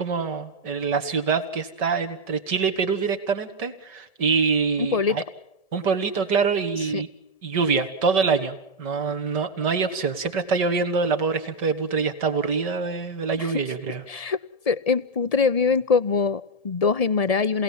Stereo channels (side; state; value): right; late; 1.7 ms